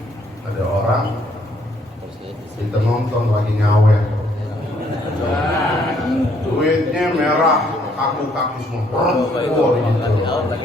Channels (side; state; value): both; normal; correlation 0.67